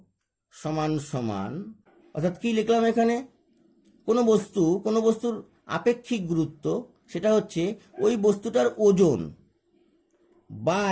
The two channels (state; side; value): identical; both; correlation 1.00